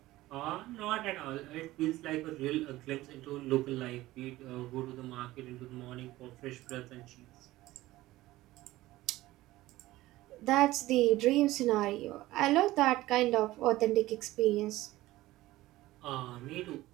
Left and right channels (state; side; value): quieter; left; 17.1 dB